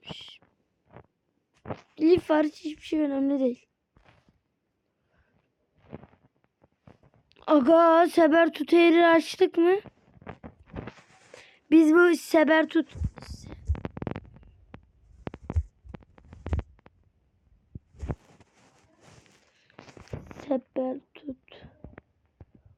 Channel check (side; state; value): both; identical; correlation 1.00